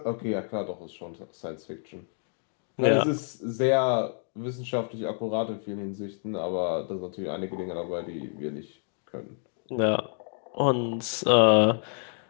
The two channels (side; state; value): right; silent; 56 dB below the other